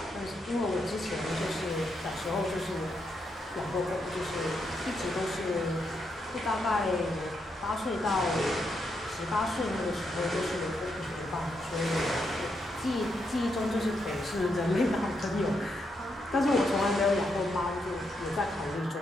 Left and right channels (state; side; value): normal; both; correlation 0.81